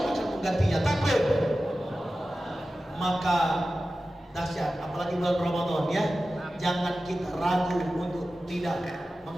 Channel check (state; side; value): normal; both; correlation 0.95